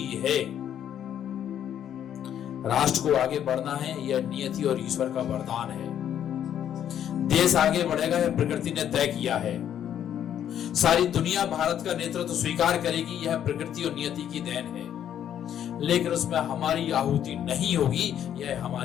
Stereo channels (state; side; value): quieter; right; 9.9 dB